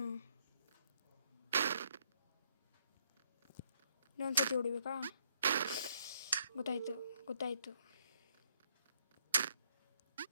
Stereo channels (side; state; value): both; inverted; correlation -0.70